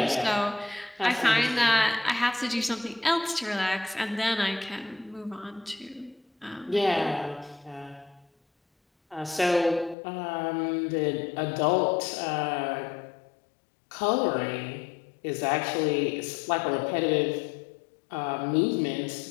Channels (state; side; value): drops out; right; at 10.0 s